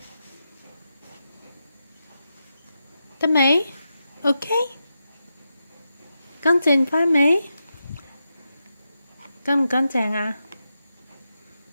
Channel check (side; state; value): both; inverted; correlation -0.88